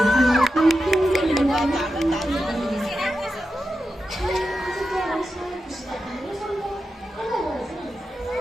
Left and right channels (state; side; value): normal; both; correlation 0.90